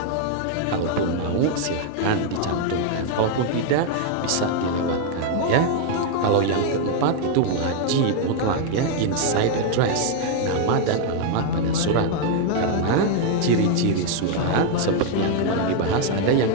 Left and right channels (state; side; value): different; both; correlation 0.00